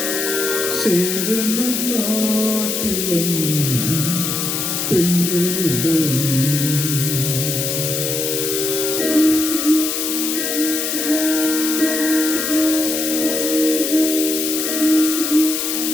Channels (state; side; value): noise; left; hiss, 1 dB below the sound